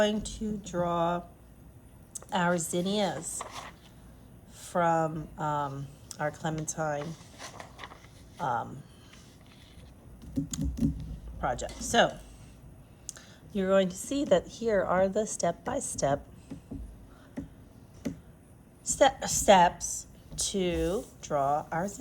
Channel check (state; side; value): identical; both; correlation 1.00